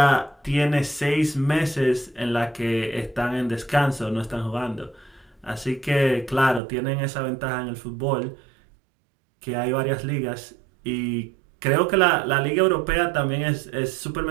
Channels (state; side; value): drops out; left; at 6.6 s